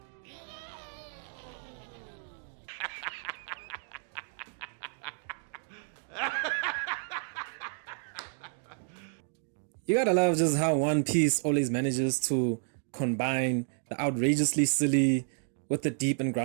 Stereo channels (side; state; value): left; silent; 57 dB below the other